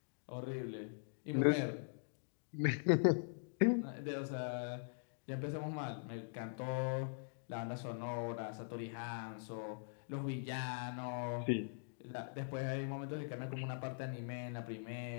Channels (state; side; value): silent; right; digital silence